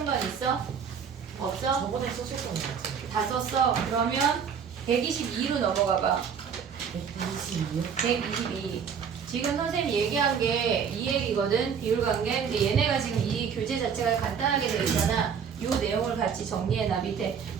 있어? 없어? 저번에 썼었던 거 같아. 다 썼어? 그러면 122로 넘어가봐 122요? 122 지금 선생님 얘기한 게 이 얘기거든 비율관계. 근데 얘네가 지금 이 교재 자체가 간단하게 되어 있잖아. 요 내용을 같이 정리해놔. 밑에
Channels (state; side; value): quieter; left; 7.0 dB